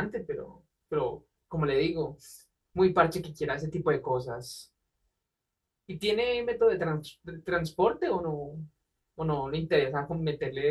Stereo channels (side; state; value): both; identical; correlation 1.00